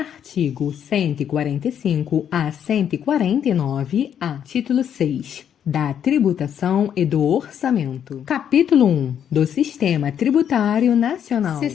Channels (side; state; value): right; quieter; 9.0 dB